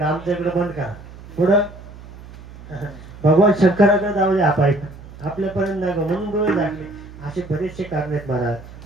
आमच्या इकडे बंद करा. पुढं भगवान शंकराकडे जाऊ द्या पाईप, आपल्यापर्यंत नाही म्हणून डोळे झाकले. असे बरेचसे कारण आहेत महाराज.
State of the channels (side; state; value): right; noise; hum, 17 dB below the sound